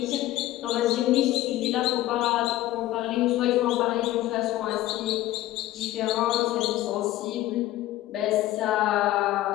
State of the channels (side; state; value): right; quieter; 15.4 dB